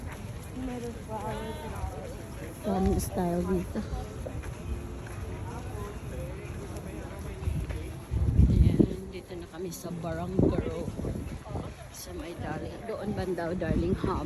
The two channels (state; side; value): identical; both; correlation 1.00